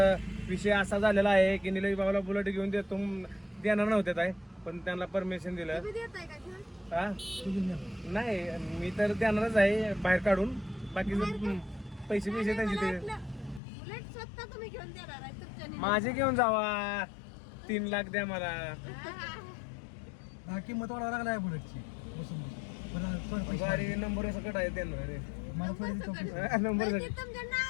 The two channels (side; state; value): right; drops out; at 13.6 s